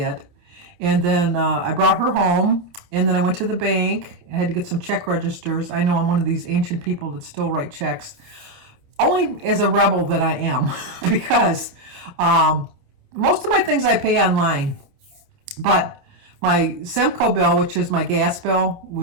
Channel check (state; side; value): late; left; 28 ms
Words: And then I brought her home, and then I went to the bank. I had to get some check registers. I know I'm one of these ancient people that still write checks. Only as a rebel that I am because most of my things I pay online. But my Semco bill, which is my gas bill,